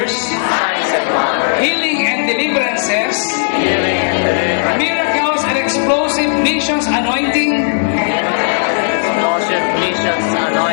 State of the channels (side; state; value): right; silent; digital silence